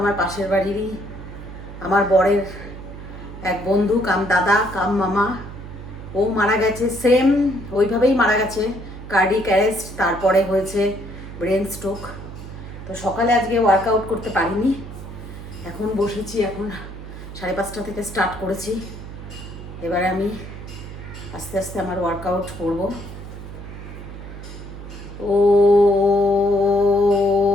পাশের বাড়িরই আমার বরের এক বন্ধু কাম দাদা কাম মামা, ও মারা গেছে। সেম ওইভাবেই মারা গেছে, কার্ডিক অ্যারেস্ট, তারপরে হয়েছে ব্রেন স্ট্রোক। তো সকালে আজকে ওয়ার্কআউট করতে পারিনি, এখন বসেছি। এখন 5:30 থেকে স্টার্ট করেছি। এবারে আমি আস্তে আস্তে আমার ওয়ার্কআউট করব। ও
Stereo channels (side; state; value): right; noise; hum, 12 dB below the sound